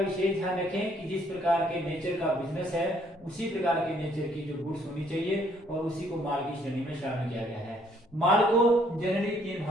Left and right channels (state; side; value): normal; both; correlation 0.65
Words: ध्यान रखें कि जिस प्रकार के नेचर का बिजनेस है उसी प्रकार के नेचर की जो गुड्स होनी चाहिए और उसी को माल की श्रेणी में शामिल किया गया है। माल को जनरली